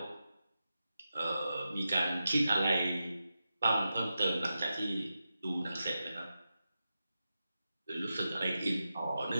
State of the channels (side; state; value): both; inverted; correlation -0.90